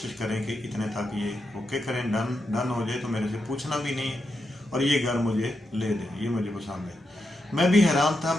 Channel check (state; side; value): normal; both; correlation 0.85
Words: करें कि इतने तक ये ओके करें, डन हो जाए, तो मेरे से पूछना भी नहीं, और ये घर मुझे ले दें, ये मुझे पसंद है। मैं भी हैरान था।